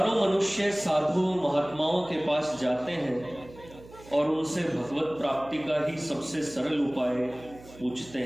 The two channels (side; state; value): right; noise; hum, 20 dB below the sound